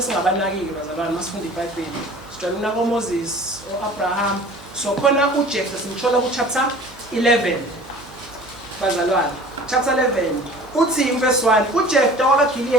singabanakiki bazalwane masifunda iBhayibheli. Sijwayele unako Moses oAbraham. So khona uJeftha simthola kuchapter 11 bazalwane. Chapter 11 uthi verse 1 uJeftha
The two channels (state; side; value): noise; right; hum, 22 dB below the sound